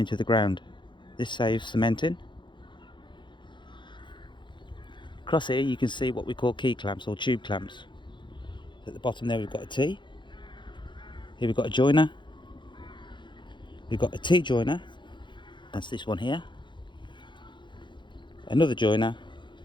the ground. This saves cementing. Across here you can see what we call key clamps or tube clamps. At the bottom there we've got a T. Here we've got a joiner. We've got a T joiner, that's this one here. Another joiner,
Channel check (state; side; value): late; right; 0.23 ms